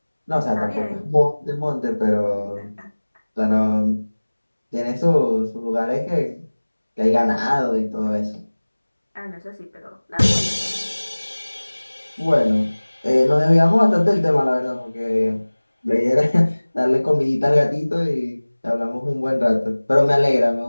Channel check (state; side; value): inverted; both; correlation -1.00